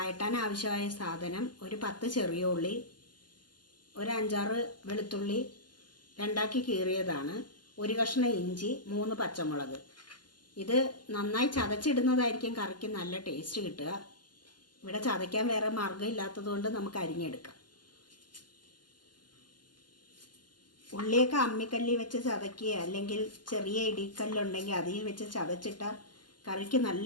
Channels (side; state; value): right; late; 0.71 ms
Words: ആവശ്യമായ സാധനം: ഒരു 10 ചെറിയ ഉള്ളി, ഒരു 5-6 വെളുത്തുള്ളി 2ആക്കി കീറിയതാണ്, ഒരു കഷ്ണം ഇഞ്ചി, 3 പച്ചമുളക്. ഇത് നന്നായി ചതച്ചിടുന്നതായിരിക്കും കറിക്ക് നല്ല ടേസ്റ്റ് കിട്ടുക. ഇവിടെ ചതയ്ക്കാൻ വേറെ മാർഗ്ഗം ഇല്ലാത്തതുകൊണ്ട് നമുക്ക് അരിഞ്ഞെടുക്കാം. ഉള്ളിയൊക്കെ അമ്മിക്കല്ലിൽ വെച്ച് ചതയ്ക്കുക, അല്ലെങ്കിൽ ചെറിയ ഇടിക്കല്ലുണ്ടെങ്കിൽ അതിൽ വെച്ച് ചതച്ചിട്ടാൽ കറിക്ക്